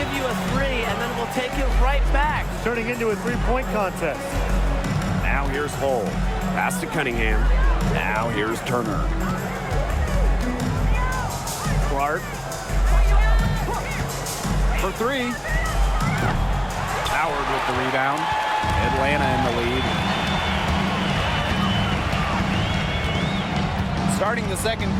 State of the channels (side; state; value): both; identical; correlation 1.00